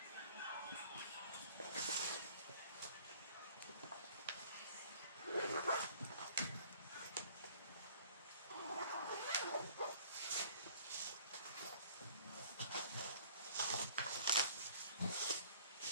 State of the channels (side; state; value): both; inverted; correlation -0.52